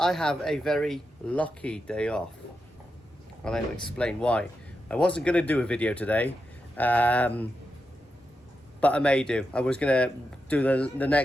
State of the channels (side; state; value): both; normal; correlation 0.88